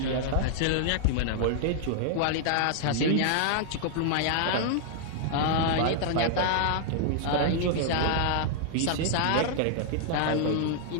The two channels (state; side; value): different; both; correlation -0.01